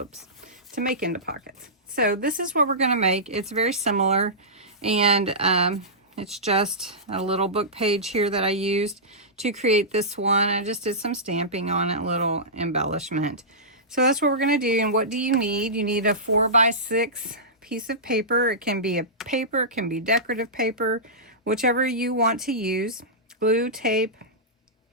to make into pockets. So this is what we're going to make. It's very similar, and it's just a little book page here that I used to create this one. I just did some stamping on it, a little embellishment. So that's what we're going to do. And what do you need? You need a 4x6 piece of paper. It can be a paper, it can be decorative paper, whichever you want to use. Glue, tape,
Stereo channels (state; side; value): normal; both; correlation -0.17